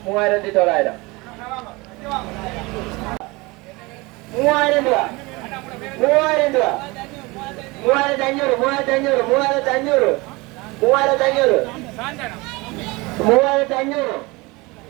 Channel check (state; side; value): quieter; left; 23.9 dB